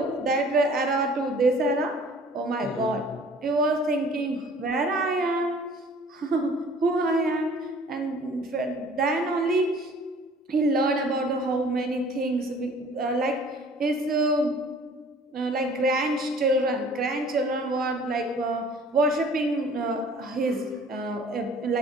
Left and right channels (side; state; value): both; normal; correlation 0.51